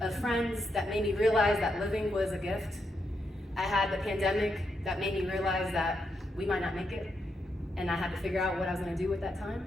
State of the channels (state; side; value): normal; both; correlation 0.82